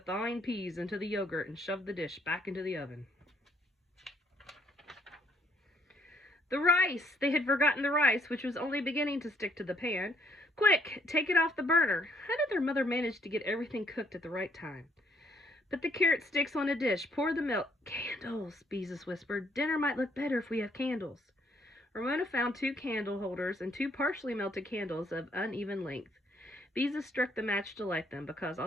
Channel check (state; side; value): normal; both; correlation 0.67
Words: peas into the yogurt and shoved the dish back into the oven. The rice! They had forgotten the rice, which was only beginning to stick to the pan. "Quick, take it off the burner." How did their mother manage to get everything cooked at the right time? "Put the carrot sticks on a dish. Pour the milk." "Candles," Beezus whispered. "Dinner might look better if we have candles." Ramona found 2 candle holders and 2 partially melted candles of uneven length. Beezus struck the match to light them because,